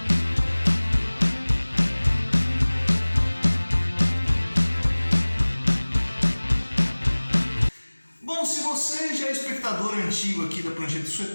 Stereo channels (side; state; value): both; inverted; correlation -1.00